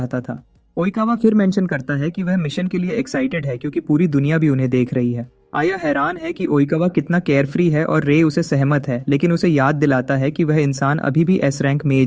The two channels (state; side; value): identical; both; correlation 1.00